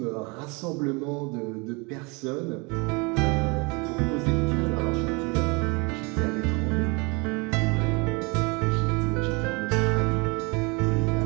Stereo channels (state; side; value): quieter; left; 29.1 dB